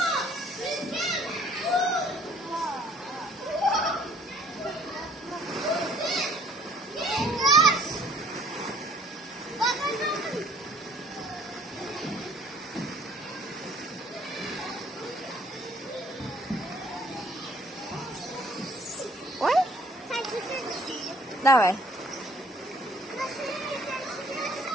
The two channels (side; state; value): both; normal; correlation 0.58